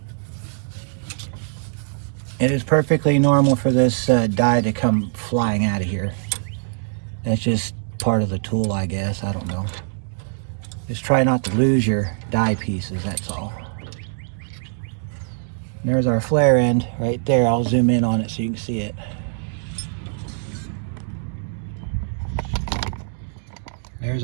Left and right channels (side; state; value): left; silent; digital silence